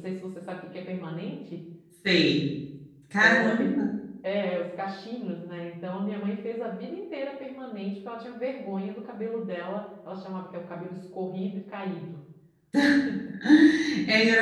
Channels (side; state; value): both; identical; correlation 1.00